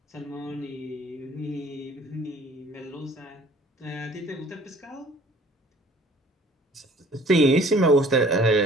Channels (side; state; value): both; normal; correlation 0.52